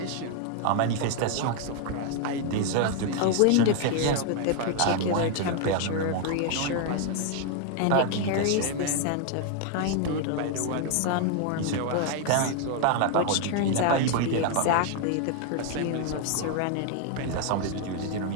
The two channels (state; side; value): different; both; correlation 0.00